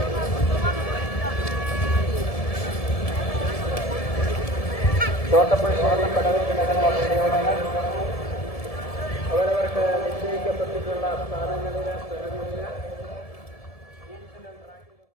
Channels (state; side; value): late; right; 1.7 ms